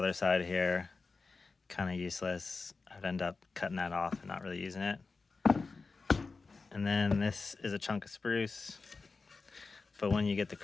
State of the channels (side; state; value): right; quieter; 4.2 dB